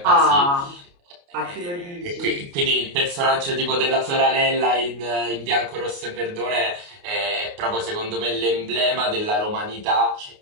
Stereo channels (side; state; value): left; late; 29 ms